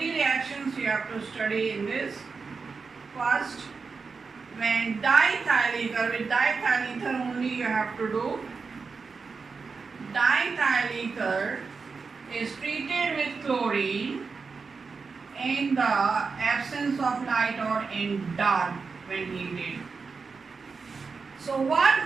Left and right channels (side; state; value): left; quieter; 4.8 dB